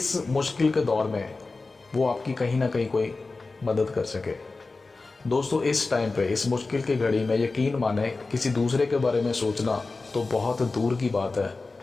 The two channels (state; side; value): quieter; right; 3.7 dB